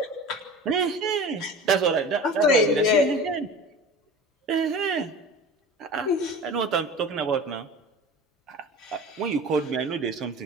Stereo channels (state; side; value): normal; both; correlation 0.36